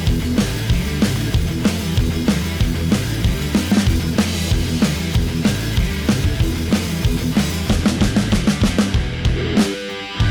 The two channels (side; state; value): both; identical; correlation 1.00